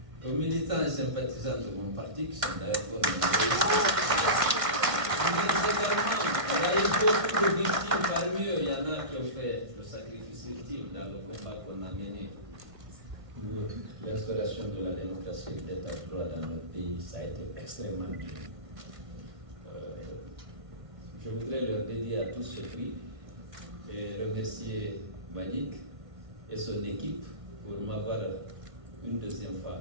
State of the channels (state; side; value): late; left; 1.6 ms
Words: aux militants et sympathisants de mon parti qui sont d'ailleurs il y a eu beaucoup de victimes, parmi eux, il y en a qui ont fait le sacrifice ultime dans le combat qu'on a mené pour l'installation de la démocratie et de l'état de droit dans notre pays. Ça a été extrêmement dur. Je voudrais leur dédier à tous ce prix et remercier Manik et son équipe pour m'avoir une deuxième fois